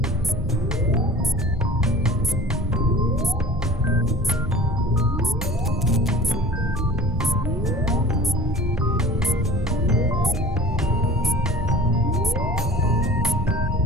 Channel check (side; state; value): both; normal; correlation 0.42